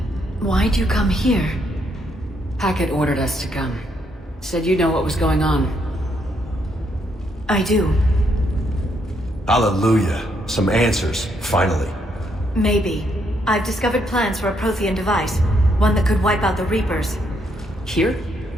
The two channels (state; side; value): normal; both; correlation 0.75